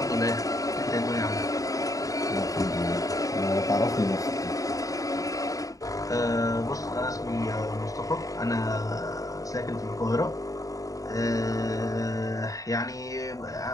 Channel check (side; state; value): right; late; 0.16 ms